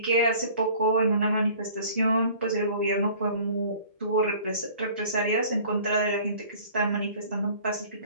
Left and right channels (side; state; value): both; inverted; correlation -0.49